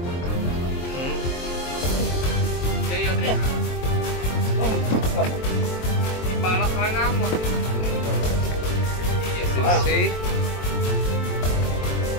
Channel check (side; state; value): right; late; 23 ms